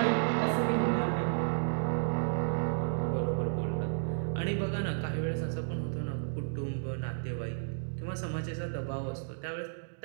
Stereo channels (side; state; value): left; silent; digital silence